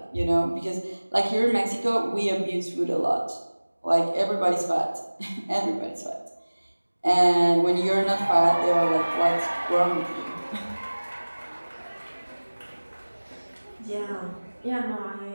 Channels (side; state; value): both; inverted; correlation -1.00